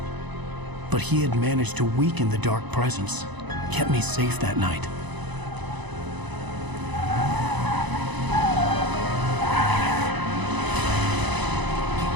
But he had managed to weaken the dark presence, kept me safe that night.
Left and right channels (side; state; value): left; late; 1.0 ms